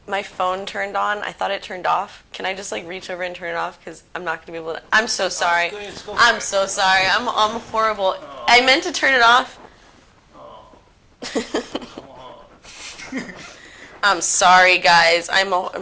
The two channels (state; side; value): identical; both; correlation 1.00